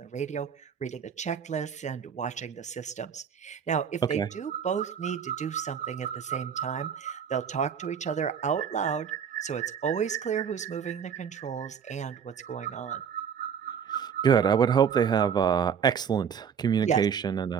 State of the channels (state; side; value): quieter; left; 7.4 dB